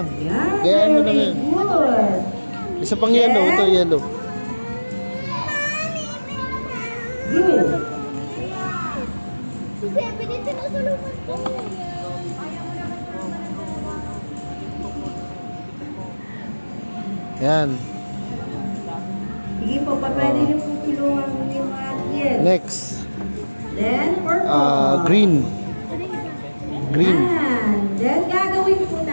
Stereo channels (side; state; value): both; inverted; correlation -1.00